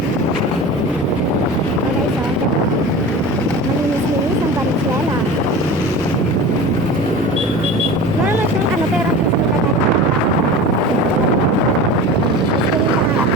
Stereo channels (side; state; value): both; normal; correlation 0.34